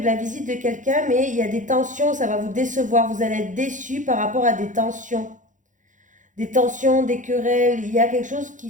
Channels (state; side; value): late; left; 0.37 ms